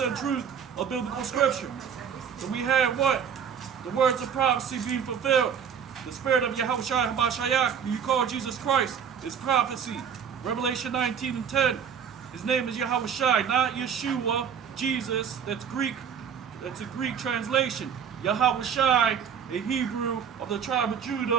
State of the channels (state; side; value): quieter; left; 7.6 dB